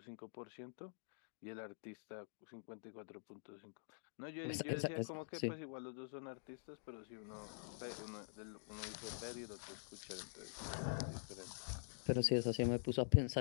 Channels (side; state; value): right; silent; digital silence